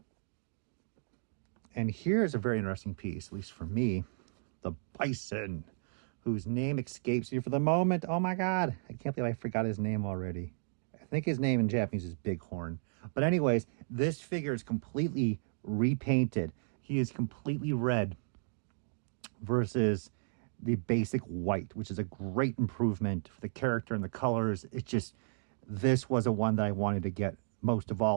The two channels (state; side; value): silent; left; digital silence